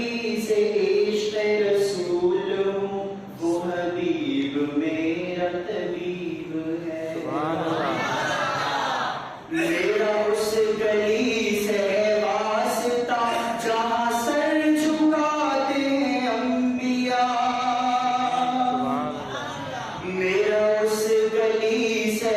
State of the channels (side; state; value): both; identical; correlation 1.00